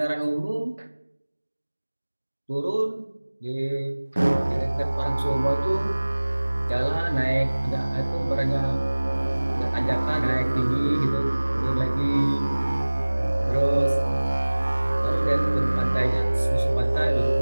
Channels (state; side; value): inverted; both; correlation -1.00